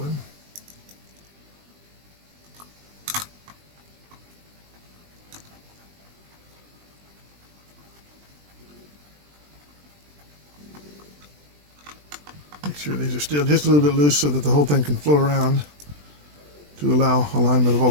Make sure these are still just a little bit loose so that the whole thing can flow around to allow alignment of all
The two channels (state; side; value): late; left; 20 ms